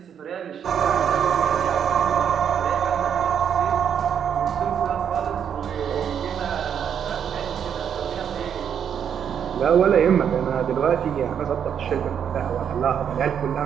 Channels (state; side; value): quieter; left; 8.2 dB